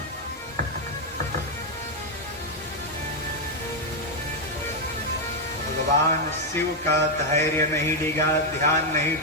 भगवान शिव का धैर्य नहीं डिगा, ध्यान नहीं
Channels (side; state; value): both; normal; correlation 0.01